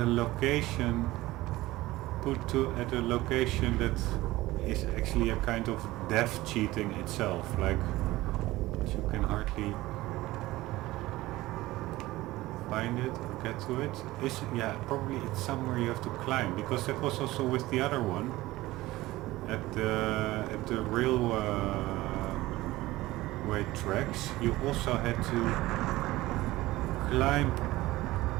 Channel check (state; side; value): quieter; left; 18.0 dB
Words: location, at a location that is actually a kind of death cheating itself, like you can hardly find it or get to it. Yeah, probably it's somewhere you have to climb, because that was also with the other one at the railway tracks. You also had to climb